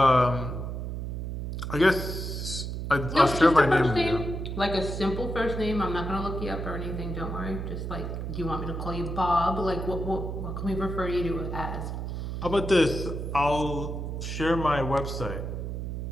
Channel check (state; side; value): noise; right; hum, 4 dB below the sound